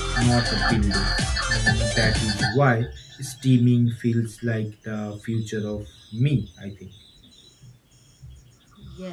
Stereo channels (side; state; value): both; identical; correlation 1.00